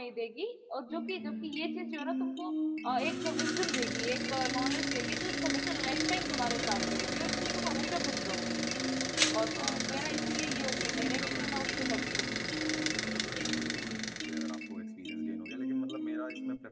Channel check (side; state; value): both; identical; correlation 1.00